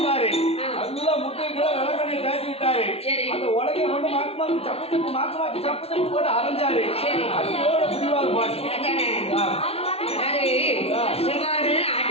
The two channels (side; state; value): right; late; 0.29 ms